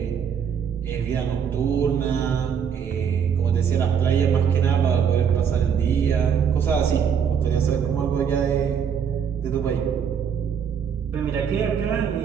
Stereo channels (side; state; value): left; quieter; 7.5 dB